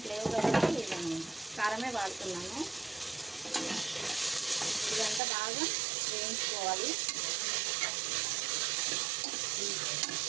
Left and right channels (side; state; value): left; drops out; at 5.2 s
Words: లేవు కాబట్టి నేను కారమే వాడుతున్నాను. ఇదంతా బాగా వేయించుకోవాలి.